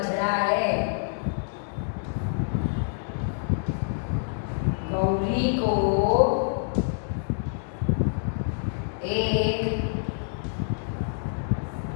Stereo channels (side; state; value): right; silent; digital silence